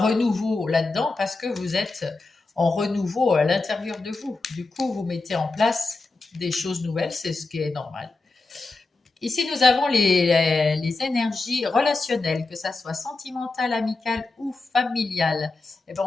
là-dedans parce que vous êtes en renouveau à l'intérieur de vous. Du coup, vous mettez en place des choses nouvelles, c'est ce qui est normal. Ici, nous avons les énergies relationnelles, que ça soit sentimentale, amicale ou familiale. Eh ben,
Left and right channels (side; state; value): right; quieter; 3.5 dB